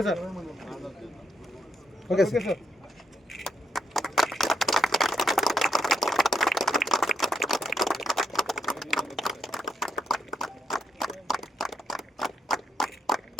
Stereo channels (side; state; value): both; normal; correlation 0.76